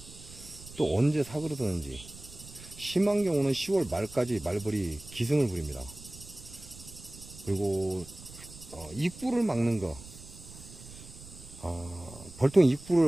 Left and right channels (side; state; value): right; noise; rumble, 17 dB below the sound